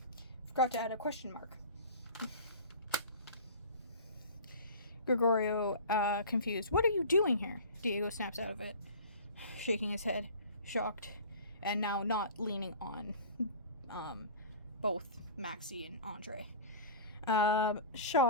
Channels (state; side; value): inverted; both; correlation -0.38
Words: Forgot to add a question mark. Gregorio, confused, "What are you doing here?" Diego snaps out of it, shaking his head, shocked, and now not leaning on both Maxie and Andre.